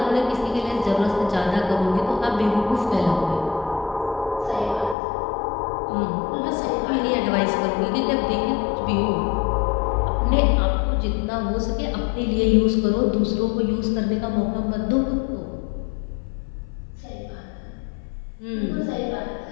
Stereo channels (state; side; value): drops out; right; at 5.0 s